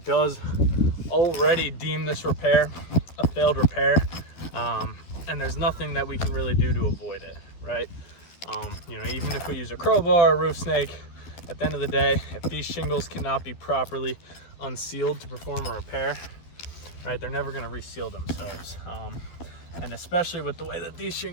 does already deem this repair a failed repair, and there's nothing that we can really do to avoid it, right? Even if we use a crowbar or roof snake, at the end of the day, if these shingles cannot be properly unsealed to perform a repair, right, they're never going to reseal themselves. And especially with the way that these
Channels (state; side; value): late; right; 11 ms